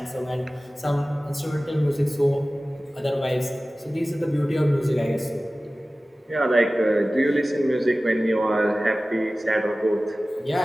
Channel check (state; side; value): normal; both; correlation 0.97